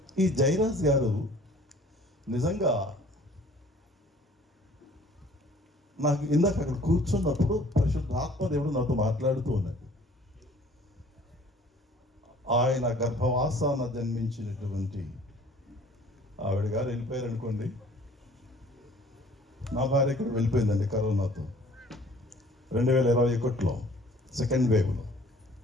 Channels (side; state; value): both; normal; correlation 0.53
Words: ఈ జయరాజ్ గారు నిజంగా నాకు ఇందాక అక్కడ కూర్చున్నప్పుడు పరిశుద్ధ ఆత్మదేవుడు నాతో మాట్లాడుతూ ఉన్నాడు. ఆయన గర్భవాసాన జన్మించినటువంటి ఆవిడ గారు వెళ్ళిపోయారు అనుకోండి. నా భార్య ఇక్కడ వెళ్ళిపోయిందండి కరోనాతో 2021లో సెకండ్ వేవ్లో.